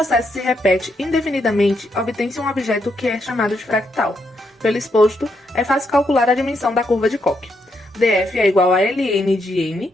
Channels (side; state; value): both; normal; correlation 0.79